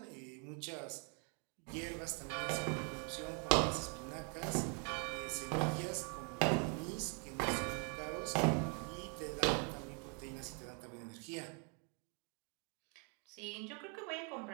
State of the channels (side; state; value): left; quieter; 36.8 dB